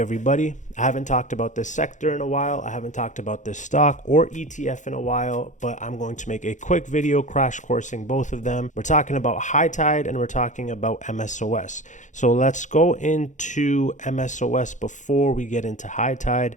I haven't talked about this sector in a while. I haven't talked about this stock or ETF in a while, but I'm going to make a quick video crash coursing both of them. We're talking about high tide and we're talking about MSOS. So let's go into MSOS before we get into high tide,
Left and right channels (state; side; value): late; right; 0.36 ms